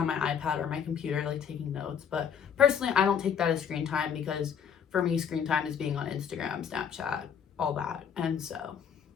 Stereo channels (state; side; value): quieter; right; 7.7 dB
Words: my iPad or my computer, like taking notes. But personally, I don't take that as screen time, because for me, screen time is being on Instagram, Snapchat, all that. And so,